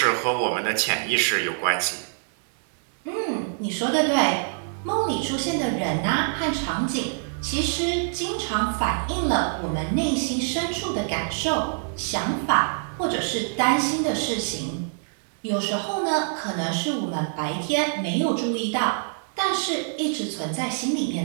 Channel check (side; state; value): left; silent; 62 dB below the other